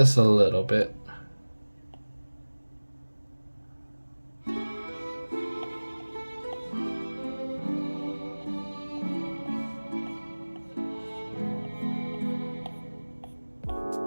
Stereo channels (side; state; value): both; inverted; correlation -1.00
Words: a little bit.